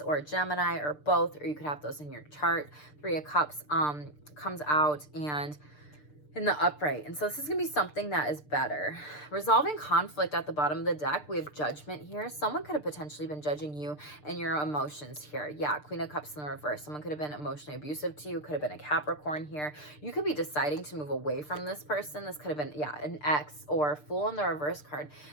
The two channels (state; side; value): late; right; 6.7 ms